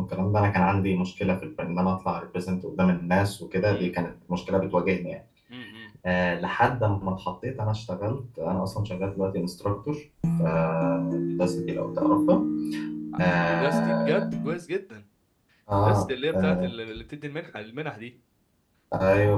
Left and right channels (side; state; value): both; identical; correlation 1.00